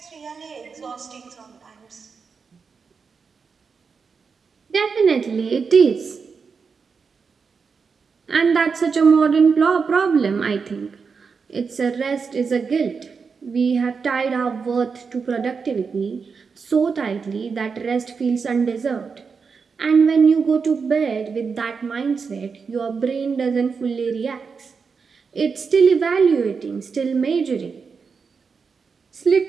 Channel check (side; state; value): left; quieter; 5.4 dB